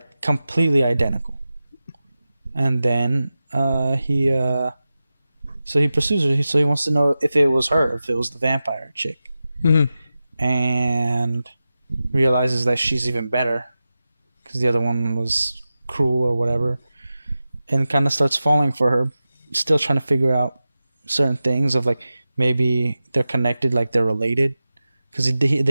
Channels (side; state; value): both; inverted; correlation -0.94